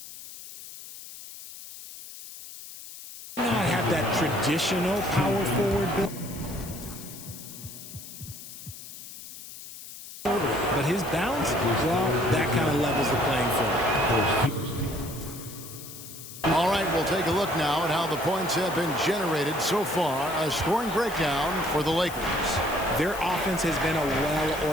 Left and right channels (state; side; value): noise; left; hiss, 14 dB below the sound